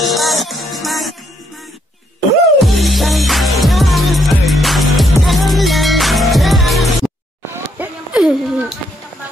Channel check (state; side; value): normal; both; correlation 0.73